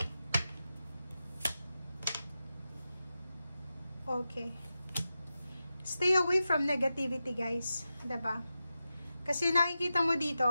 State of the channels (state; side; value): inverted; both; correlation -0.91